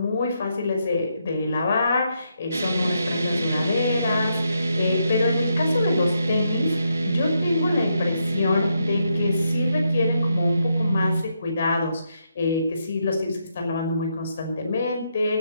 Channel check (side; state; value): both; inverted; correlation -0.80